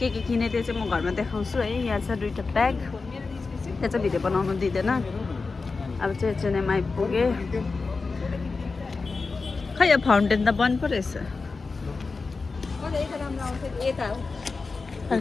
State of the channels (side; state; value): right; quieter; 4.2 dB